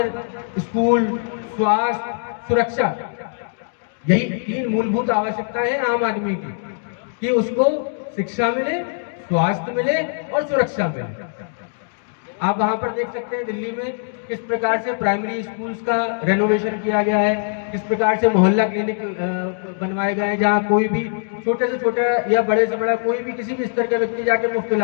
स्कूल, स्वास्थ्य, सुरक्षा, यही 3 मूलभूत आवश्यकताएं हैं आम आदमी की, कि उसको शिक्षा मिले, स्वास्थ्य मिले और सुरक्षा मिले। आप वहां पर देख सकते हैं दिल्ली में किस प्रकार से प्राइमरी स्कूल्स का रेनोवेशन किया गया है, किस प्रकार से मोहल्ला क्लिनिक बनवाए गए हैं, जहां कोई भी छोटे से छोटा या बड़े से बड़ा कोई भी किसी भी स्तर का व्यक्ति जाके मुफ्त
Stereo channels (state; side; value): silent; right; digital silence